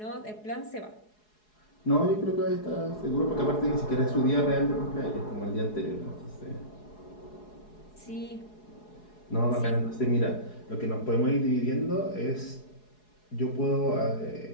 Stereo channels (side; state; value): right; late; 4.7 ms